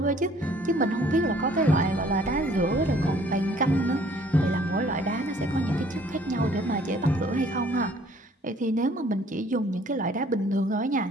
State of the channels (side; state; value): both; normal; correlation 0.58